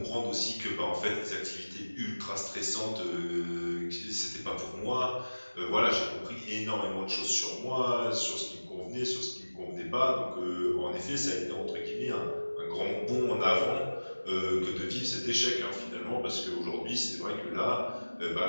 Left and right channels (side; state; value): both; inverted; correlation -1.00